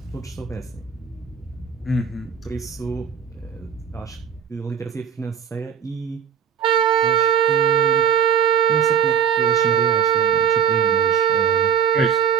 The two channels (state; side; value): quieter; left; 8.0 dB